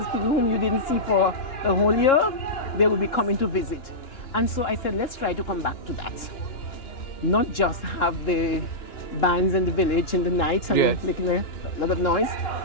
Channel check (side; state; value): right; late; 2.9 ms